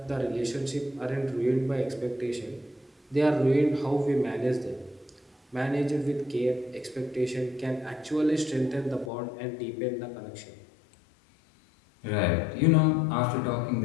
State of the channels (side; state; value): right; drops out; at 9.1 s